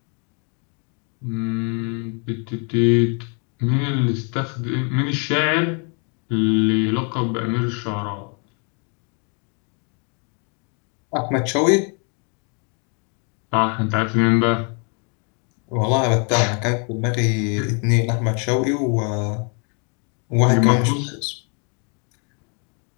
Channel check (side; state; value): right; quieter; 37.8 dB